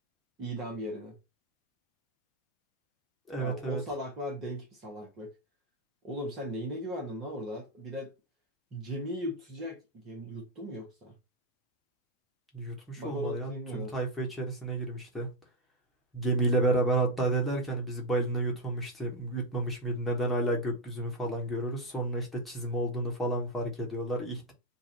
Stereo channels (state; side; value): normal; both; correlation 0.05